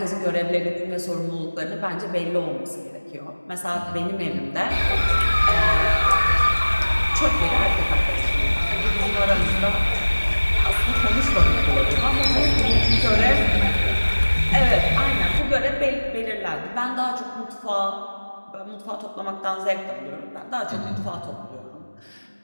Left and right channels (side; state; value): both; inverted; correlation -1.00